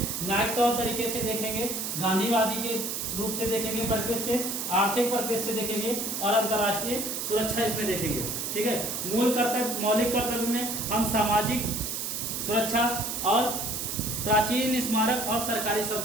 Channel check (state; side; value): noise; right; hiss, 3 dB below the sound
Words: न्यायिक तौर तरीके से देखेंगे, गांधीवादी के रूप से देखेंगे, परिप्रेक्ष्य से, आर्थिक परिप्रेक्ष्य से देखेंगे और अंतर्राष्ट्रीय सुरक्षा इसमें देखेंगे। ठीक है, मौलिक कर्तव्य में हम सामाजिक सुरक्षा और प्राचीन स्मारक और सरकारी